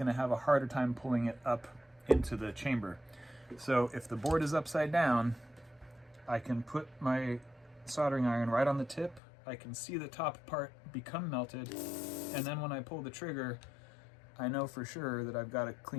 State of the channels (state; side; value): drops out; right; at 9.2 s